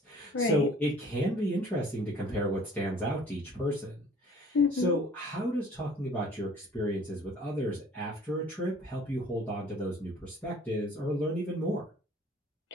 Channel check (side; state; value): both; normal; correlation 0.52